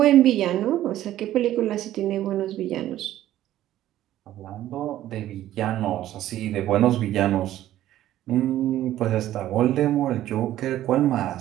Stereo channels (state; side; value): quieter; left; 13.3 dB